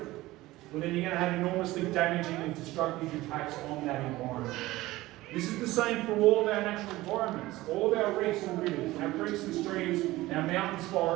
Well, then you're going to have enormously damaging and destructive impacts on that environment. This is the same for all of our natural environments, all of our reefs and rivers, our creeks and streams, our mountains,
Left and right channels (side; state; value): left; quieter; 18.1 dB